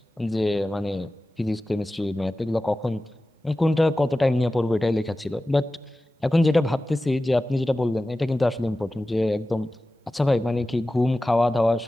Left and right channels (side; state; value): both; normal; correlation 0.95